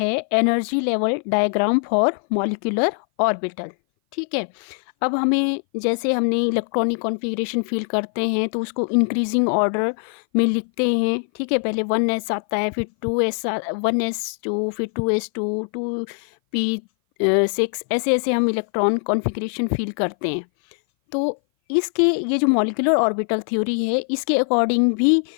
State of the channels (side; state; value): right; silent; 58 dB below the other